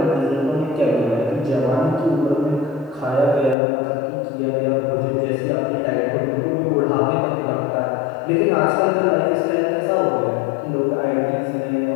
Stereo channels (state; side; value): drops out; right; at 3.6 s